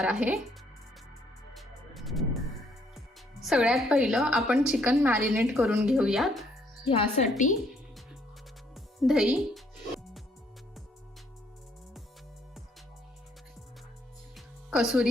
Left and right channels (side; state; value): both; normal; correlation 0.68